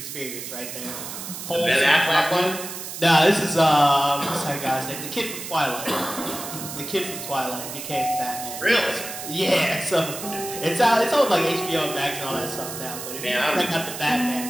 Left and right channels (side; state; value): right; noise; hiss, 9 dB below the sound